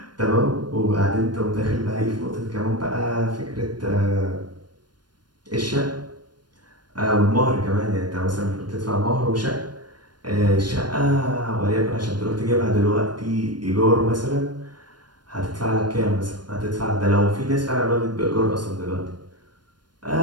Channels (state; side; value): late; left; 0.71 ms